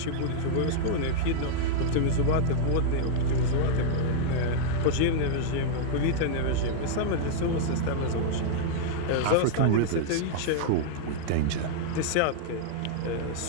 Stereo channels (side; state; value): both; different; correlation -0.01